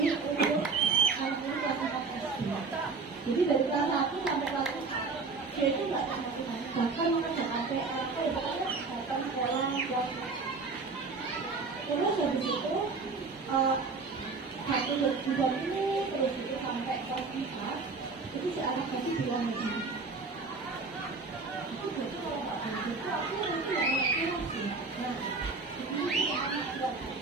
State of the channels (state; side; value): quieter; left; 4.3 dB